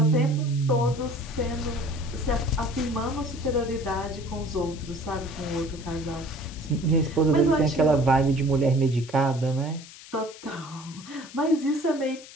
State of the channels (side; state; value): left; noise; hiss, 18 dB below the sound